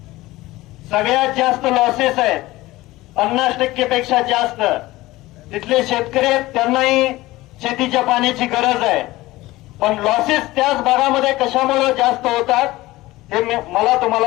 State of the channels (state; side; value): quieter; right; 18.5 dB